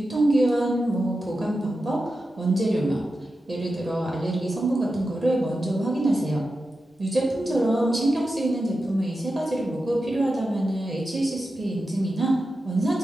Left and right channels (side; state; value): both; normal; correlation 0.91